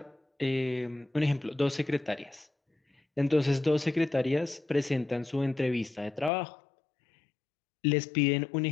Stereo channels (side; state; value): right; drops out; at 6.3 s